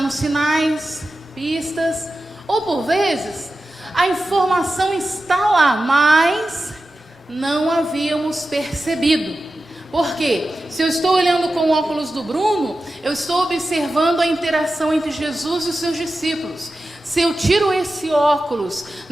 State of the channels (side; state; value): both; normal; correlation 0.93